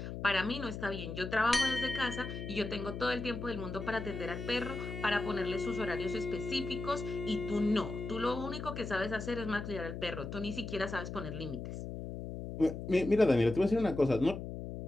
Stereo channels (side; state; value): left; noise; hum, 7 dB below the sound